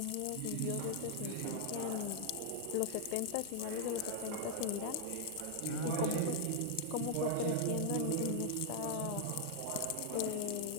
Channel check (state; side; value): different; both; correlation 0.00